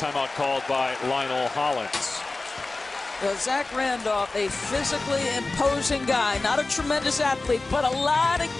called by Lionel Hollins. Well, Zach Randolph, a physically imposing guy, not a tremendous athlete, but a lot of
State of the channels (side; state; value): right; quieter; 3.3 dB